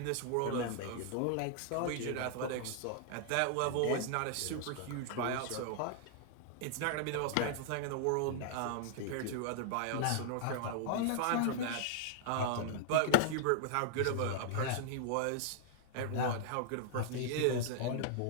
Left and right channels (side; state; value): both; different; correlation -0.01